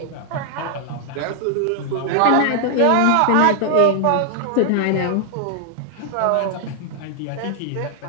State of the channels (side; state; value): both; different; correlation 0.00